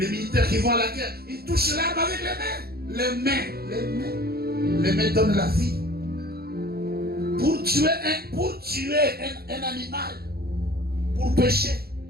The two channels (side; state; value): left; late; 0.45 ms